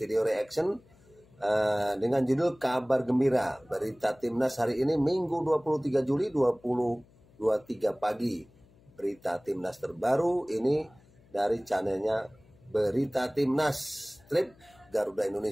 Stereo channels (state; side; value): noise; left; hum, 28 dB below the sound